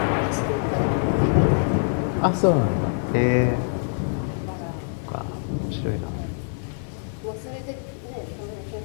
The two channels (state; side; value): silent; right; digital silence